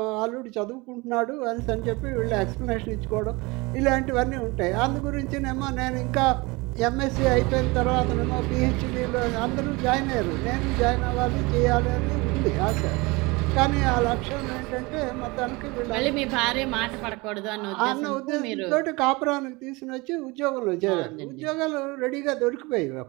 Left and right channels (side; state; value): left; quieter; 24.6 dB